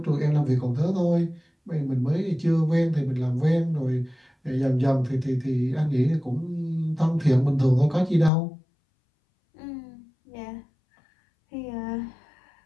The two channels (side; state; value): right; drops out; at 8.3 s